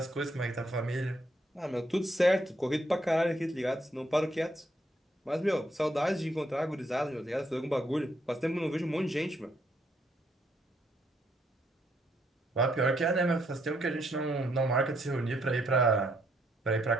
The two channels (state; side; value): normal; both; correlation 0.73